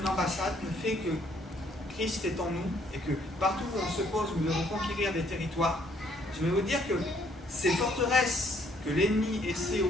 une ambassade, le fait que Christ est en nous et que partout où on se pose, nous devons conquérir des territoires. Je vais vous dire que ces forteresses que l'ennemi essaie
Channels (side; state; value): both; normal; correlation 0.66